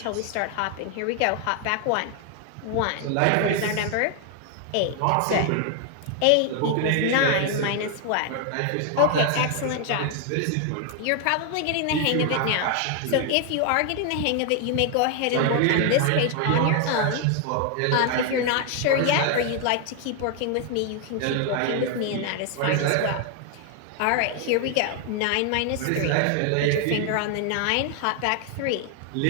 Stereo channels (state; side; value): different; both; correlation 0.00